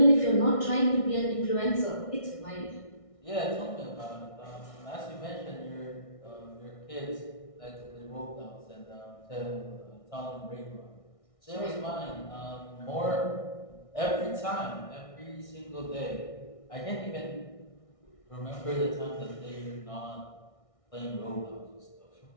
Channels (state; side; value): late; right; 1.6 ms